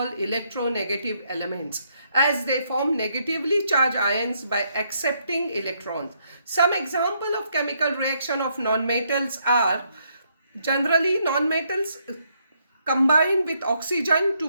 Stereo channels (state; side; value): inverted; both; correlation -0.74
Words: electronegative elements as they form negatively charged ions by accepting electrons. Some example of chemical reaction of nonmetals are generally nonmetals combine with oxygen to